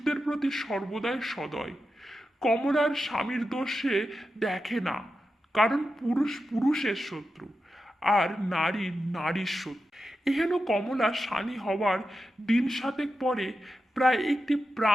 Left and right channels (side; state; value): both; normal; correlation 0.90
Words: প্রতি সর্বদাই সদয়। কমলার স্বামীর দোষ সে দেখে না, কারণ পুরুষ পুরুষের শত্রু আর নারী নারীর শত্রু। এহেন কমলা শানী হওয়ার দিন সাতেক পরে প্রায় একটি